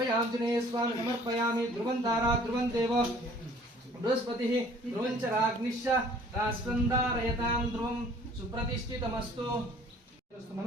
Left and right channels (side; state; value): both; normal; correlation 0.54